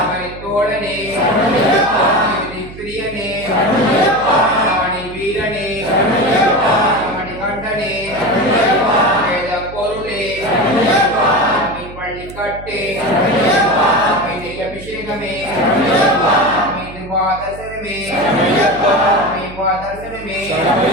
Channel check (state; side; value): noise; right; hum, 15 dB below the sound